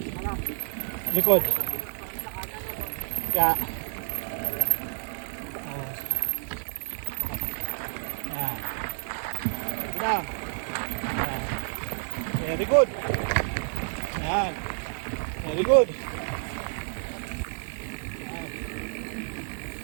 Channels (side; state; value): left; silent; digital silence